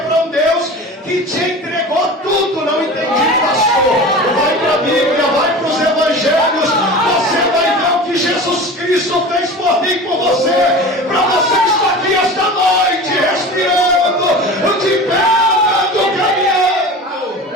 para um Deus que te entregou tudo. Não entendi, pastor. Vai para a Bíblia, vai para os evangelhos. Você vai ver o que Jesus Cristo fez por mim e por você. Para você estar aqui esta noite, respirando, de pé, andando, caminhando.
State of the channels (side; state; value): both; normal; correlation 0.34